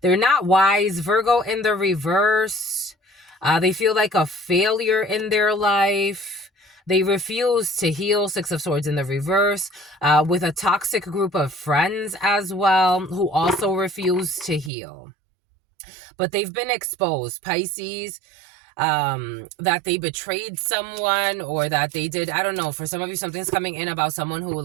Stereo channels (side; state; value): left; drops out; at 14.7 s